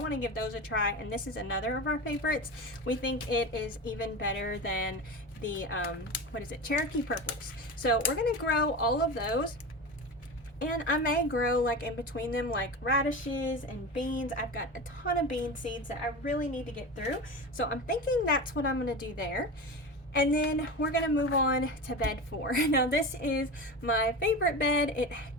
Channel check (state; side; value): normal; both; correlation 0.26